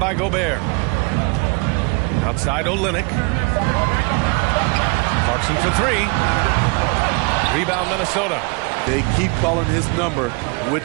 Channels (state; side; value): quieter; left; 31.4 dB